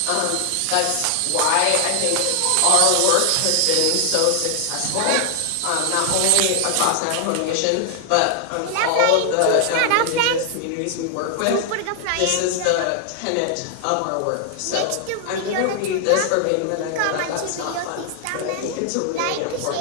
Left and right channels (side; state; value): both; different; correlation 0.00